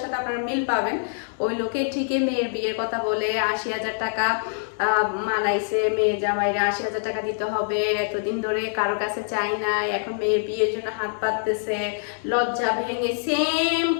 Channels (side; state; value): right; silent; digital silence